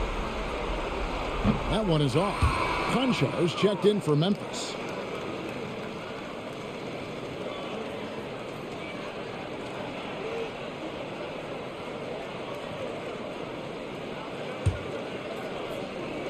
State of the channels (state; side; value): identical; both; correlation 1.00